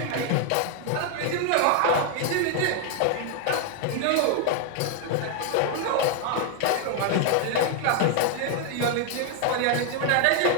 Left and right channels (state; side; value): different; both; correlation 0.00